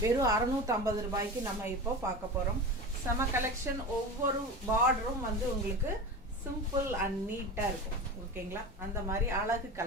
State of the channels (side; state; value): both; normal; correlation 0.29